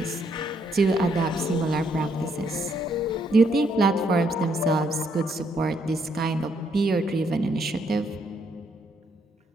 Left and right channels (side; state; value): both; normal; correlation 0.73